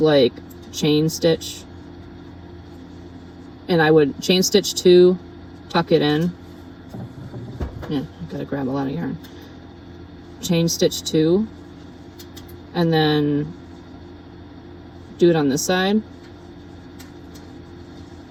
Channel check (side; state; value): both; identical; correlation 1.00